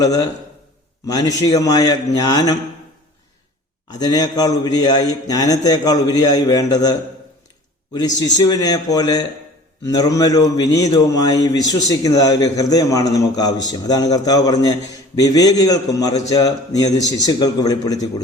മാനുഷികമായ ജ്ഞാനം. അതിനേക്കാൾ ഉപരിയായി, ജ്ഞാനത്തേക്കാൾ ഉപരിയായി വേണ്ടത് ഒരു ശിശുവിനെ പോലെ നിർമ്മലവും വിനീതവുമായി വിശ്വസിക്കുന്നതായ ഒരു ഹൃദയമാണ് നമുക്ക് ആവശ്യം. അതാണ് കർത്താവ് പറഞ്ഞ്, വിവേകികൾക്കും മറിച്ച് നീ അത് ശിശുക്കൾക്ക് വെളിപ്പെടുത്തി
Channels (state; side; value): normal; both; correlation 0.45